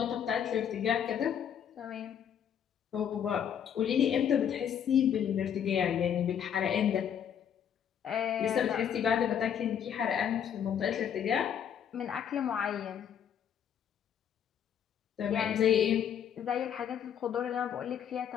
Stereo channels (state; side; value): quieter; right; 8.7 dB